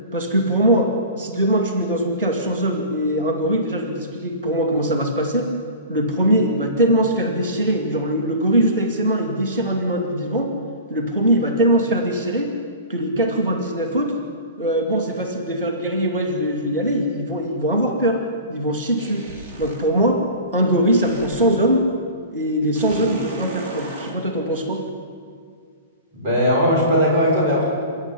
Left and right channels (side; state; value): both; inverted; correlation -0.37